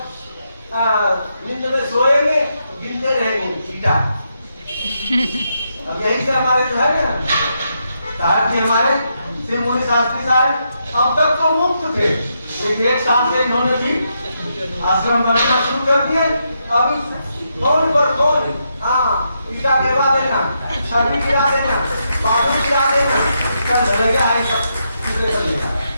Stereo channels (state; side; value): inverted; both; correlation -0.81